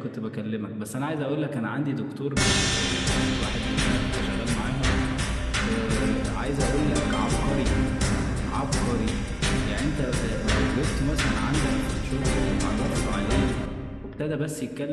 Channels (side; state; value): both; identical; correlation 1.00